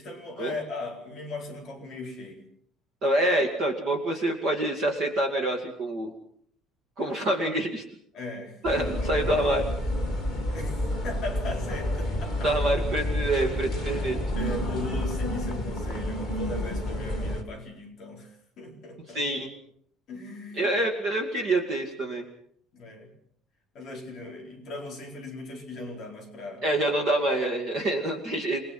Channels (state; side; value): normal; both; correlation 0.60